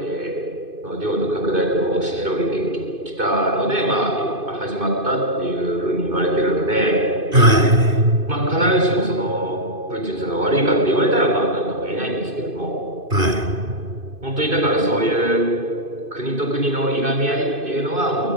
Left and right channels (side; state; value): left; late; 2.5 ms